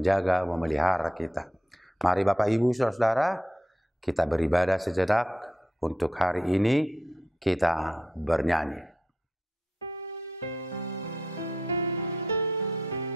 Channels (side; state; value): both; normal; correlation 0.80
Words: memelihara kita. Mari Bapak Ibu Saudara-saudara, kita beribadah sejenak. Untuk hari ini kita bernyanyi.